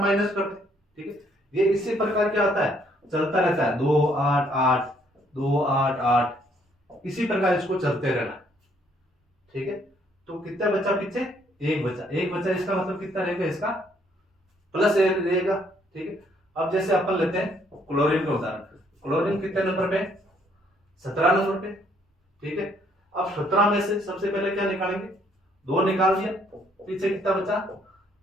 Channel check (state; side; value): normal; both; correlation 0.67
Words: माइनस करते। ठीक है, ये इसी प्रकार क्या होता है, चलता रहता है, 2 8 8 2 8 8, इसी प्रकार इसको चलते रहना। ठीक है, तो कितना बचा पीछे, 1 बचा। 1 बचा, इसका मतलब कितना रहेगा, इसका +1 रहेगा। ठीक है, अब जैसे अपन लेते हैं क्लोरीन का उदाहरण। क्लोरीन कितने नंबर पे, 17 नंबर पे। ठीक है, अब 17 में से सबसे पहले क्या निकालेंगे, 2 निकाल दिया, पीछे कितना बचा,